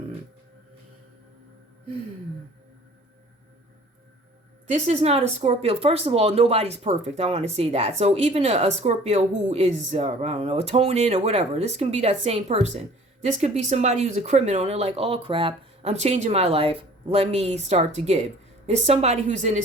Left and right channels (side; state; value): both; normal; correlation 0.50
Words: this is not a Scorpio. First of all, nobody's perfect. I want to say that. So even a Scorpio who is, I don't know, atoning or whatever, this can be that same person. This could be somebody who's a criminal and they're like, oh crap, I'm changing my life. Let me start to give. There's somebody who's in